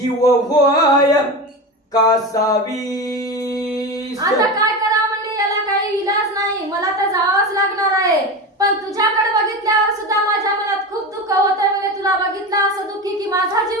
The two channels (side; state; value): both; normal; correlation 0.23